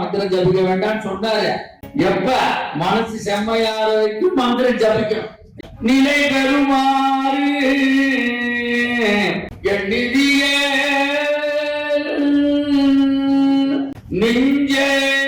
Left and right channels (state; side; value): identical; both; correlation 1.00